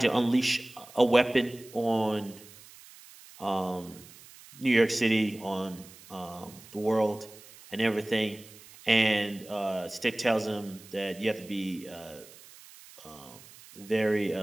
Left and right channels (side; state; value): right; noise; hiss, 21 dB below the sound